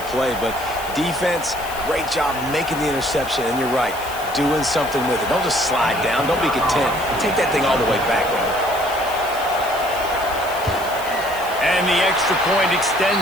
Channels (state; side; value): noise; left; hiss, 15 dB below the sound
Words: play. But defense, great job making the interception. And you're right, doing something with it. Don't just slide down. Don't be content. Take that thing all the way back, man. And the extra point